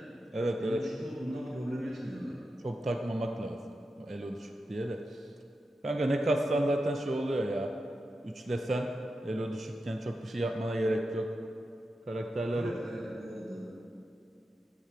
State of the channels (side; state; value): both; normal; correlation 0.89